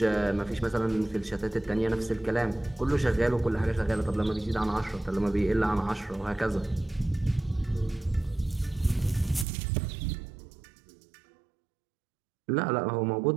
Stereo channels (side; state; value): left; drops out; at 9.5 s